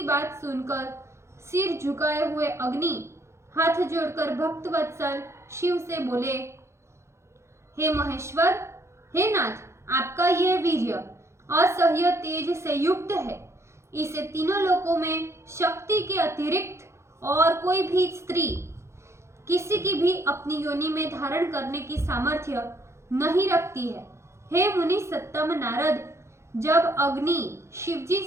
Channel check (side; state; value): left; late; 0.13 ms